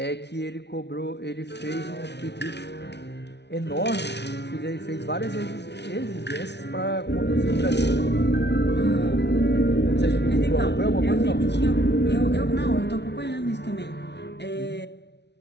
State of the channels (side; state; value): right; late; 0.50 ms